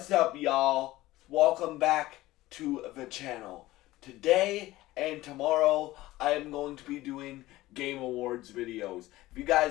up, y'all? Welcome back to the channel. Today and tomorrow, I am going to be doing Game Awards videos. If you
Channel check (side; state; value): right; quieter; 17.4 dB